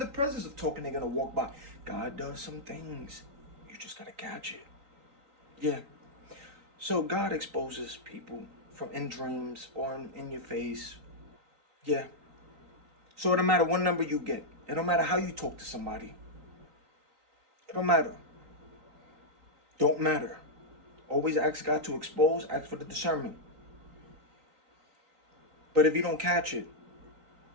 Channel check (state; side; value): late; left; 3.9 ms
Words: presence of talking, they're going to walk by. God does some things. You just got to catch it. Yeah. So God exposes people from in dreams or in your face. Yeah. So it don't matter what number you get. It don't matter how you talk to somebody. It don't matter. Don't matter. Always ask God to expose. Ask for the discernment. But if you don't catch it,